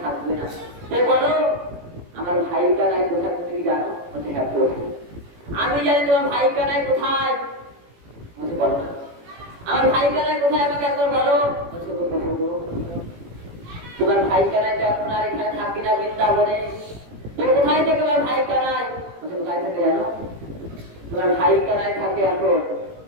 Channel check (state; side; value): late; left; 18 ms